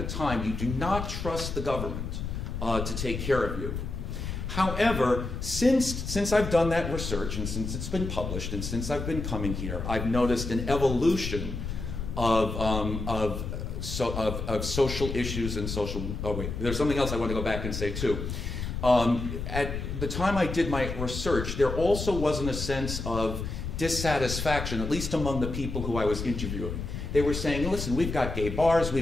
time, you do not trust the government to take care of you. However, since I've done that research and since it's been published and since I've been coming here, I've noticed an evolution of social issues and social, oh wait, there's something else I want to go back and say too. At the time I did my research, there also wasn't a sense of dissatisfaction, at least among the people who I was interviewing. They were saying, listen, we've got gay bars,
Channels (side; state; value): left; noise; rumble, 5 dB below the sound